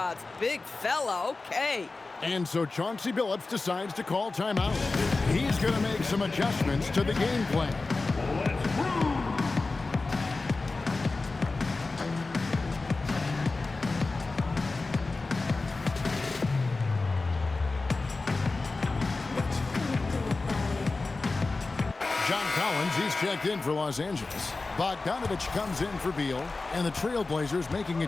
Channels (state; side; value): quieter; right; 3.6 dB